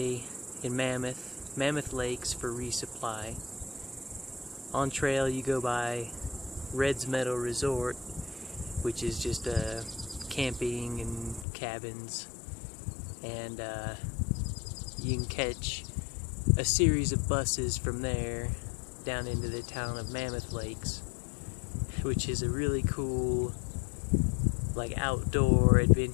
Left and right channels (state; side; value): drops out; right; at 11.5 s